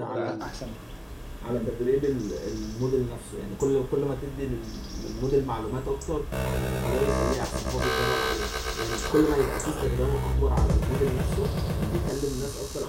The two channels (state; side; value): identical; both; correlation 1.00